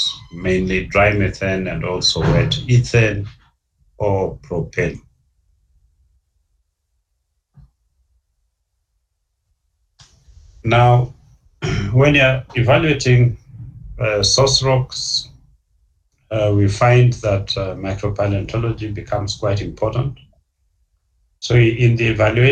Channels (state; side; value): identical; both; correlation 1.00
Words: mainly dry methane and also wet ethane or propane. Now, when you're evaluating source rocks, we find that micropaleontology becomes quite important. So in the